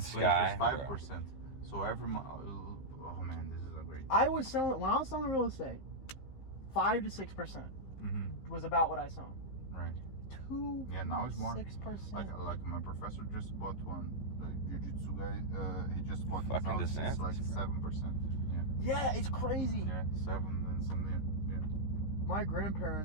sky. is 5%. So every month, oh man, this is a great. When I was selling real estate, 5 to 6% was about what I sold. Right. 2. Yeah, now it's more. 6%. Like my professor just bought one. The jiu-jitsu guy, he just bought his Fucking house. It's like DeSantis, 7%. Yeah, it's crazy. Yeah, 7 and something. Yeah. My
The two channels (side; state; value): right; late; 15 ms